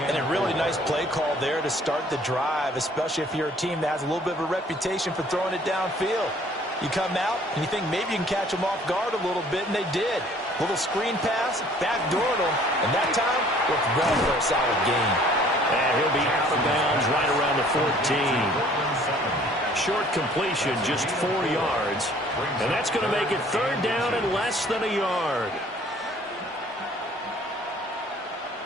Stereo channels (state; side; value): normal; both; correlation 0.56